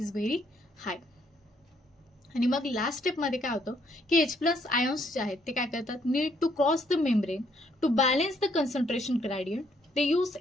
व्हेरी हाय. आणि मग लास्ट स्टेप मध्ये काय होतं की H+ आयॉन्स जे आहेत ते काय करतात need to cross the membrane to balance the concentration gradient. ते यूज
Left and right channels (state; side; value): normal; both; correlation 0.70